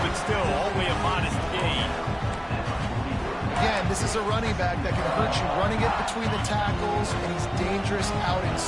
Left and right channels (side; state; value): both; identical; correlation 1.00